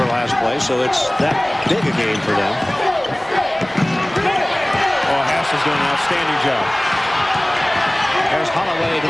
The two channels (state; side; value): noise; right; rumble, 28 dB below the sound